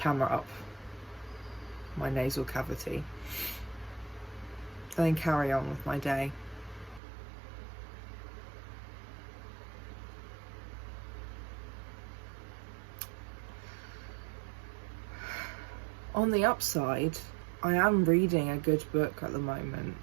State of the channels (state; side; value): drops out; left; at 7.0 s